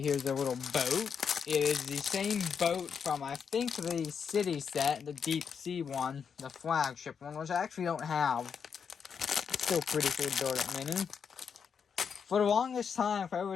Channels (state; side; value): quieter; right; 6.7 dB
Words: Here's a little boat. It is the same boat from, I think, the City set, the Deep Sea one, the flagship one, which I actually don't have. It's still pretty cool to build it mini. For the longest time, for